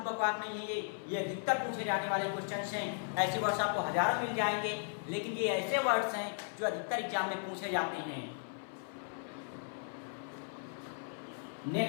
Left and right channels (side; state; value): right; silent; 53 dB below the other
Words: बकवास नहीं है। ये अधिकतर पूछे जाने वाले क्वेश्चंस हैं। ऐसे वर्ड्स आपको हजारों मिल जाएंगे, लेकिन ये ऐसे वर्ड्स हैं जो अधिकतर एग्जाम में पूछे जाते हैं।